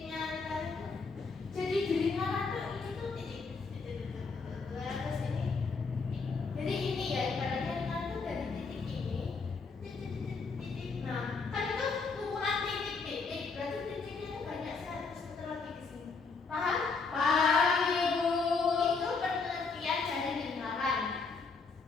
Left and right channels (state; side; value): quieter; right; 4.6 dB